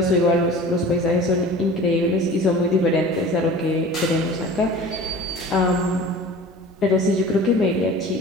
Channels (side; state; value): both; normal; correlation 0.40